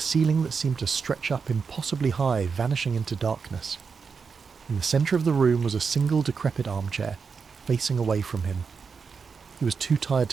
that seemed to stretch up impossibly high, vanishing into darkness. In the centre of the room was a single decrepit armchair, facing away from him. He was too tired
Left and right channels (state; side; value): quieter; left; 5.5 dB